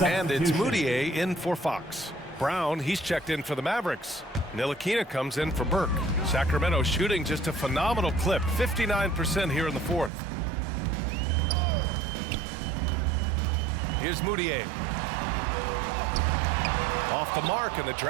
And it's Moutier in for Fox. Brown, he's checked in for the Mavericks. Ntilikina comes in for Burke. Sacramento shooting just a phenomenal clip. 59% here in the fourth. Here's Moutier. Off the mark, and the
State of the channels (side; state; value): left; drops out; at 10.1 s